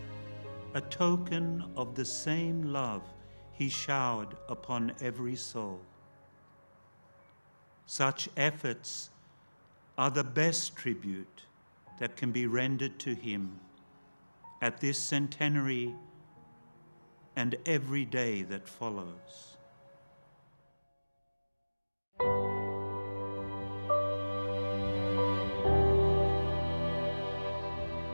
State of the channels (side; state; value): both; inverted; correlation -1.00